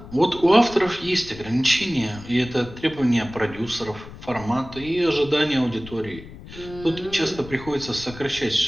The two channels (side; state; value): left; noise; rumble, 16 dB below the sound